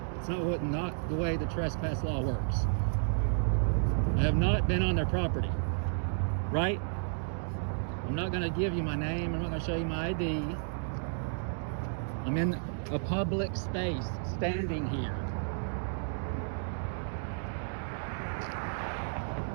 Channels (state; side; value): silent; left; digital silence